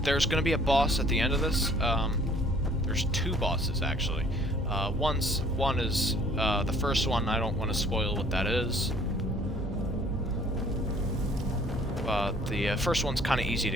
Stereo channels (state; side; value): normal; both; correlation 0.56